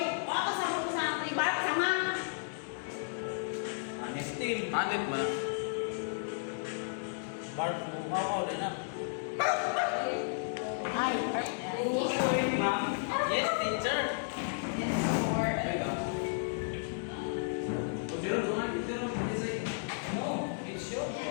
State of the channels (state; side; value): silent; right; digital silence